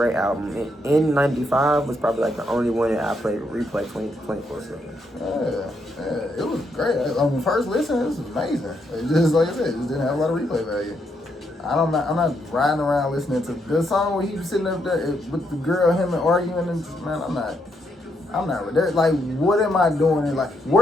album. And N95 was probably like the only one that I played replay 24/7. Yeah, it was great. On the first listen, it was amazing. It just, like I said, it just didn't have a lot of replay value. I'm not riding around listening to the song where he was sitting up there with the girl, him and arguing, and man, I'm not. Like, what am I doing? And like,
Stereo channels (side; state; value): both; normal; correlation 0.77